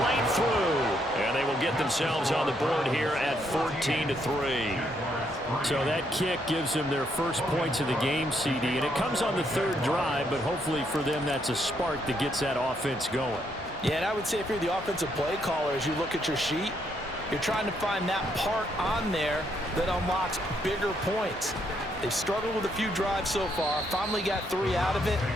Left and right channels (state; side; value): normal; both; correlation 0.74